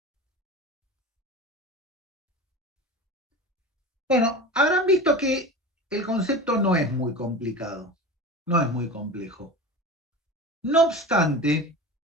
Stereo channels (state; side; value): normal; both; correlation 0.31